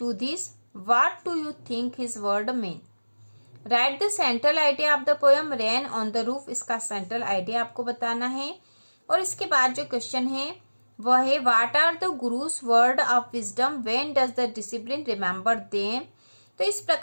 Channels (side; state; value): both; inverted; correlation -1.00